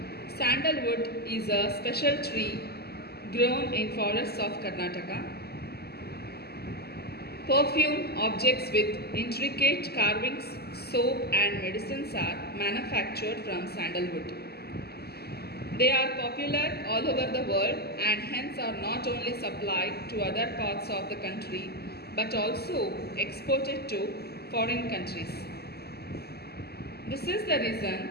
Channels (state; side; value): late; right; 0.46 ms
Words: Sandalwood is a special tree grown in forests of Karnataka. Perfume objects with intricate carvings, soap and medicines are manufactured from sandalwood. They are popular all over the world and hence are not only supplied to other parts of the country but also exported to foreign countries. This is the